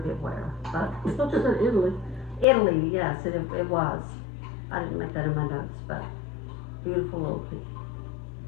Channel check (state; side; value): drops out; right; at 2.5 s